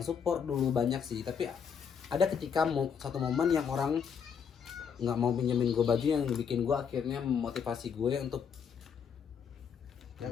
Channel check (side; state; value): right; quieter; 7.0 dB